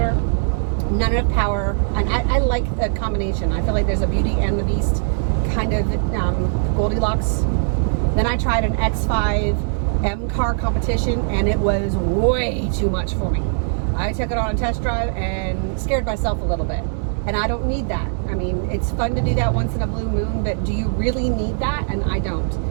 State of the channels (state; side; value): silent; left; digital silence